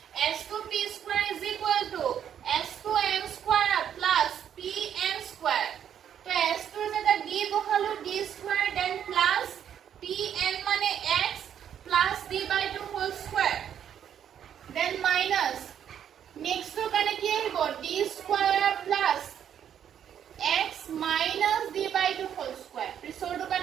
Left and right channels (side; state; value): left; quieter; 9.2 dB